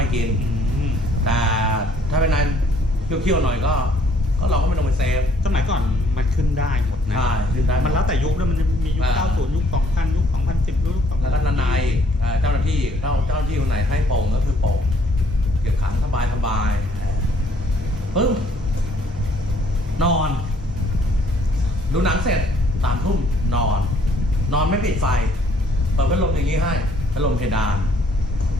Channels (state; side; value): normal; both; correlation 0.63